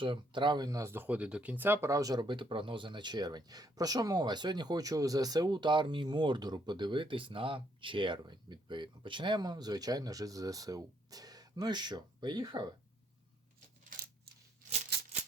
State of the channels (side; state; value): both; normal; correlation 0.70